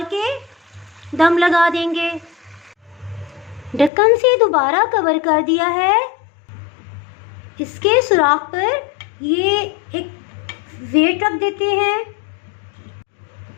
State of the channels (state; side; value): drops out; right; at 3.9 s